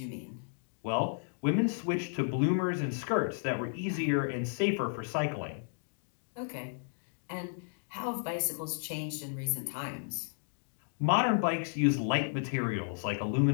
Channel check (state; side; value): silent; right; digital silence